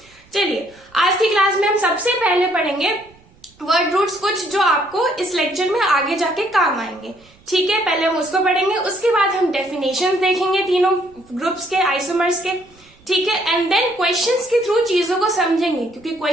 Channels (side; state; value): right; noise; rumble, 29 dB below the sound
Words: चलिए, आज की क्लास में हम सबसे पहले पढ़ेंगे वर्ड रूट्स, कुछ जो आपको इस लेक्चर में आगे जाके काम आएंगे। ठीक है, पहले हम उसको पढ़ेंगे, उसके बाद हम डेफिनेशंस देखेंगे तीनों ग्रुप्स के, आइसोमर्स के। ठीक है, एंड देन क्वेश्चंस के थ्रू चीजों को समझेंगे, क्योंकि